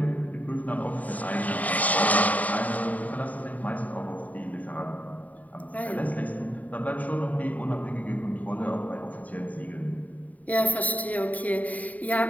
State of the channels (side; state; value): right; late; 0.073 ms